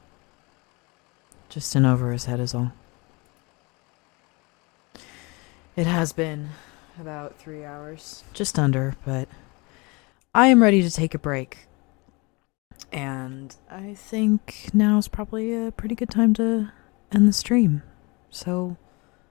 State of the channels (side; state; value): right; quieter; 27.3 dB